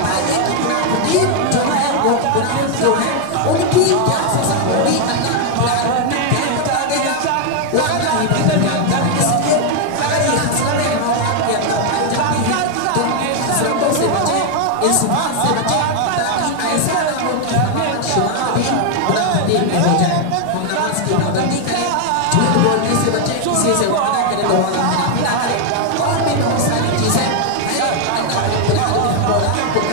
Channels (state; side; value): different; both; correlation 0.00